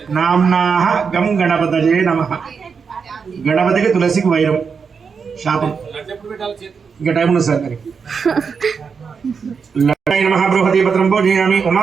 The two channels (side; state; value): left; quieter; 5.8 dB